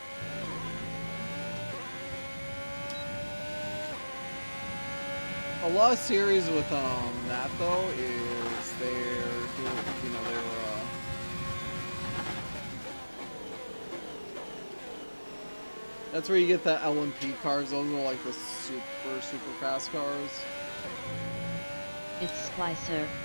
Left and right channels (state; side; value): inverted; both; correlation -1.00